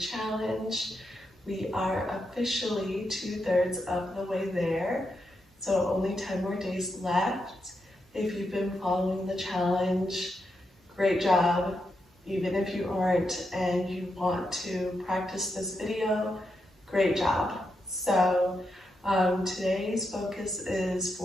We are officially 2/3 of the way there, so only 10 more days left. If you've been following the challenge, great job. Even if you aren't and you want to practice this video, great job. So today's focus is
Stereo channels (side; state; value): both; normal; correlation 0.84